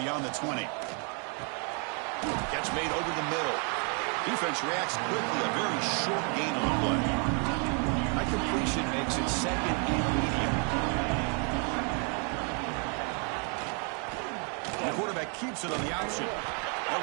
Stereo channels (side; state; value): left; quieter; 38.1 dB